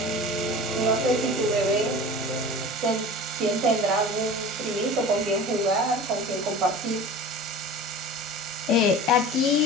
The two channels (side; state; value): both; normal; correlation 0.37